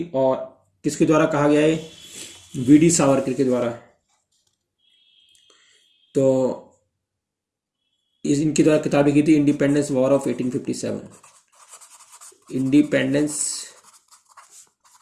और किसके द्वारा कहा गया है, वीडी सावरकर के द्वारा। तो इनके द्वारा किताब लिखी थी independence war of 1857। Independence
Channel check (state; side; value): identical; both; correlation 1.00